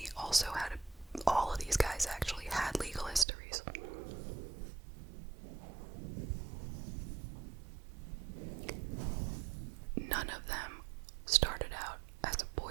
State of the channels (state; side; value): drops out; left; at 3.2 s